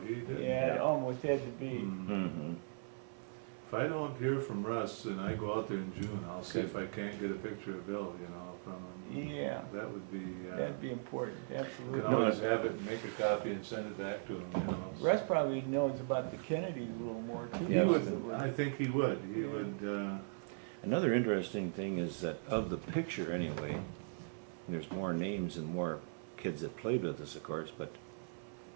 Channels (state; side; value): silent; left; 52 dB below the other